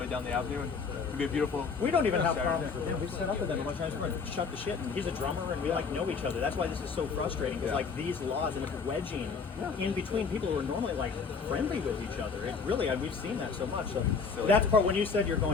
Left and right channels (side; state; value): right; quieter; 5.2 dB